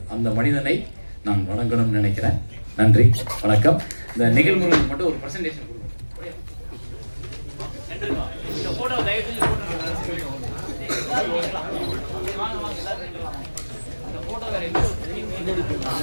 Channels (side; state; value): both; inverted; correlation -1.00